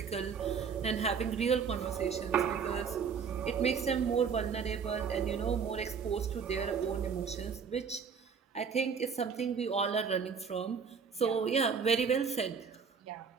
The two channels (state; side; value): quieter; left; 6.3 dB